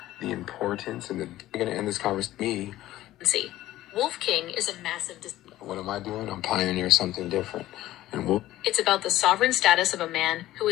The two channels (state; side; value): quieter; right; 15.0 dB